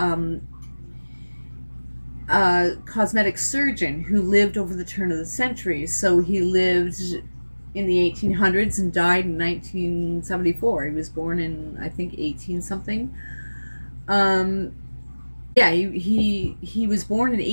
a cosmetic surgeon who lived over the turn of the century. So he lived in the 1800s and died in 1974. He was born in, I think, 18 something. Yeah, he was born in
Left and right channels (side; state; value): both; inverted; correlation -1.00